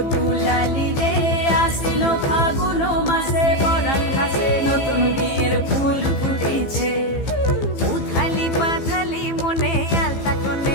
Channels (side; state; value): right; late; 15 ms